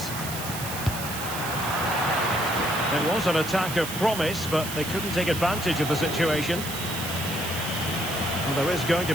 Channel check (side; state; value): right; noise; hiss, 7 dB below the sound